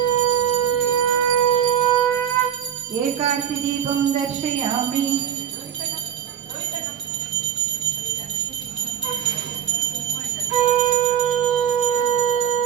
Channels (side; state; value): left; quieter; 9.3 dB